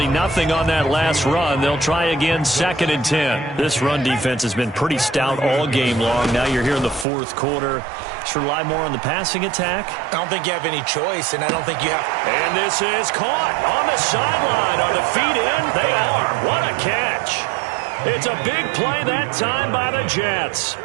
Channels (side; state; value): left; drops out; at 7.1 s